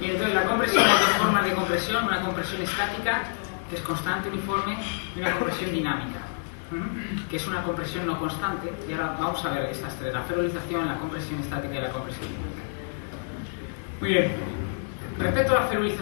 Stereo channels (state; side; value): silent; right; digital silence